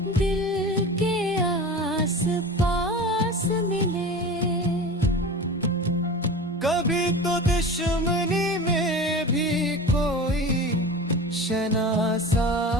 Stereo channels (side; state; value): both; normal; correlation 0.33